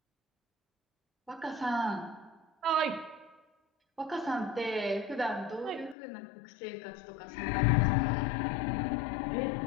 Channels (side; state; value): right; drops out; at 6.0 s